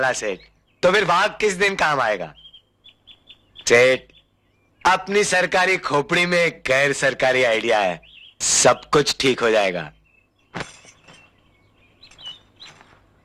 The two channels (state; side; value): identical; both; correlation 1.00